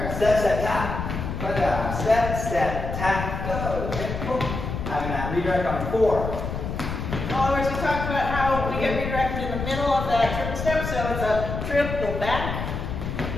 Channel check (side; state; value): left; noise; rumble, 5 dB below the sound